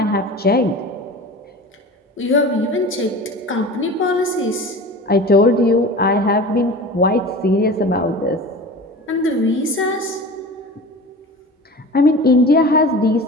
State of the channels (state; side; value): normal; both; correlation 0.35